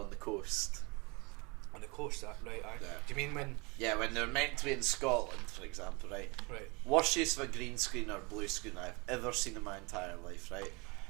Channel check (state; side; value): quieter; left; 27.9 dB